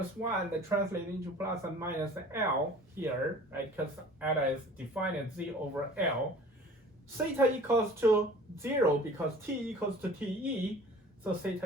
1, that translates into plus and minus L here, right? Because eta is defined as z over L. Theta equals to 0 because t equals to te, so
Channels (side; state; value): both; normal; correlation 0.46